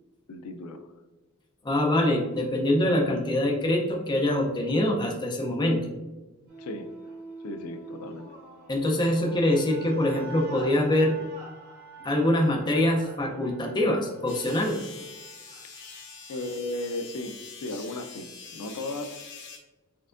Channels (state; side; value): normal; both; correlation 0.59